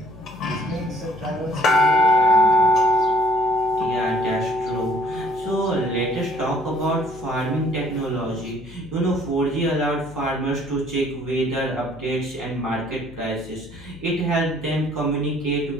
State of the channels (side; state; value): left; noise; hum, 19 dB below the sound